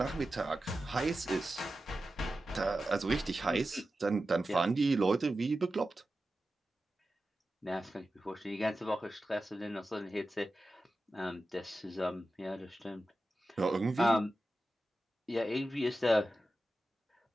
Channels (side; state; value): both; normal; correlation 0.93